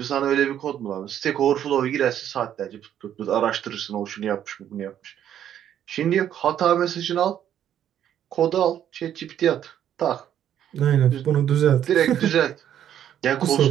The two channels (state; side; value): quieter; left; 10.3 dB